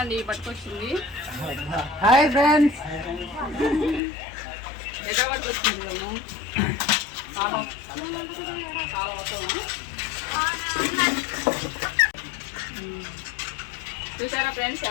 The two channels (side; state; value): right; drops out; at 4.0 s